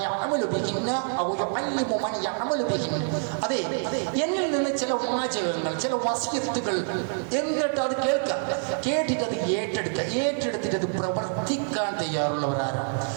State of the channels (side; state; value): left; silent; 61 dB below the other